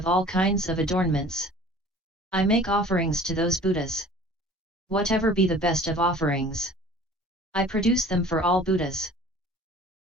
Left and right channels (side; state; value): both; normal; correlation 0.47